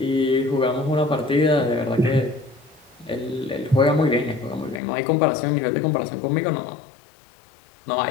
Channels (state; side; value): drops out; right; at 4.8 s